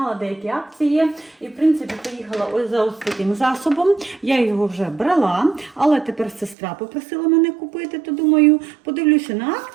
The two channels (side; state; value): left; drops out; at 6.6 s